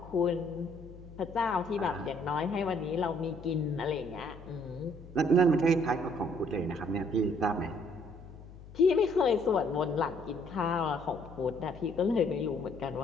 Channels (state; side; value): noise; left; hum, 17 dB below the sound